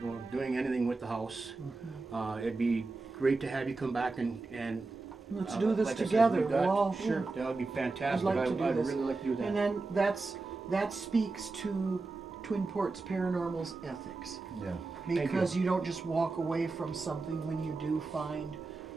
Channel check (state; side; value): quieter; left; 3.7 dB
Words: doing anything with the house. It'd be great to have you come back and Let's do this like I said, together. we've got- We'll all- sure, that would be I'd fantastic. like to do I'd this. really like to do that. And then that speaks to Twin Ports Paranormal's ethics. Yeah. Because you don't just walk away from something when you do find